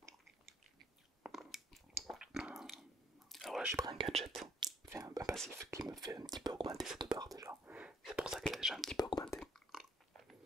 Alors là, j'ai pris un gadget, enfin, un passif qui me fait un petit peu augmenter cette barre déjà. C'est pour ça qu'elle a déjà un petit peu augmenté.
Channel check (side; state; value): both; normal; correlation 0.64